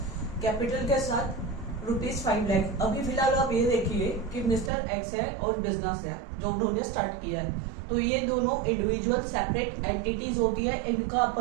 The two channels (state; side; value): drops out; left; at 4.7 s